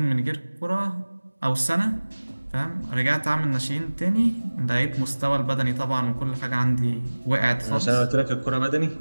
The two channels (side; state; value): both; inverted; correlation -1.00